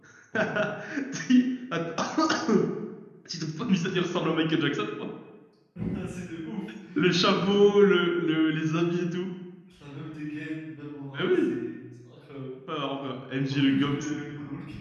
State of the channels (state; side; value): identical; both; correlation 1.00